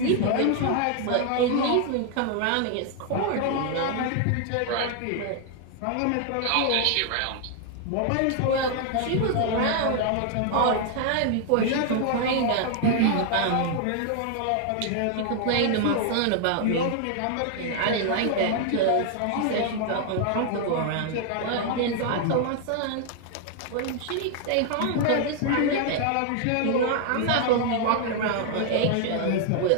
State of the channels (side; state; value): both; different; correlation 0.00